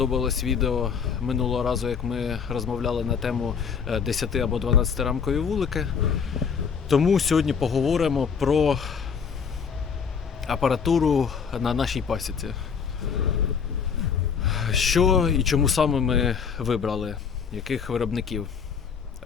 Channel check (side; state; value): right; quieter; 6.5 dB